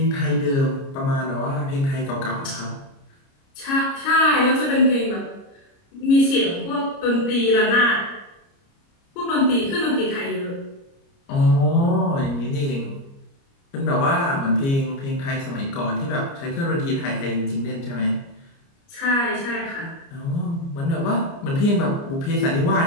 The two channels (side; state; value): right; late; 29 ms